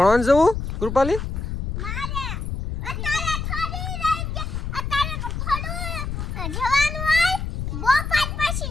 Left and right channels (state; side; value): noise; left; rumble, 4 dB below the sound